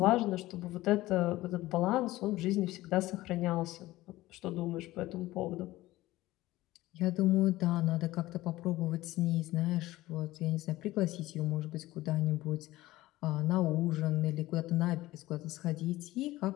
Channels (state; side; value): quieter; right; 17.4 dB